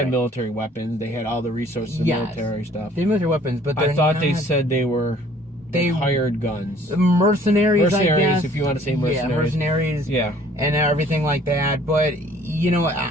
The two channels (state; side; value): normal; both; correlation 0.56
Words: military weapons. They had all the resources of military stuff. They had military weapons, but I thought they said they were. They hired guns. Mercenaries, I guess. If you want to say mercenaries. Yeah, mercenaries. Yeah. And everything like that. But